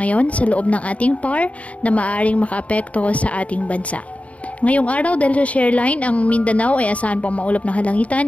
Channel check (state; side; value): late; right; 0.066 ms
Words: sa loob ng ating PAR na maaaring makaapekto sa ating bansa. Ngayong araw, dahil sa shareline, ang Mindanao ay asahan pang maulap na halangitan